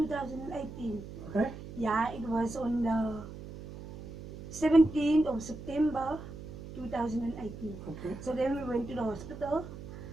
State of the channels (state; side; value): noise; right; hum, 12 dB below the sound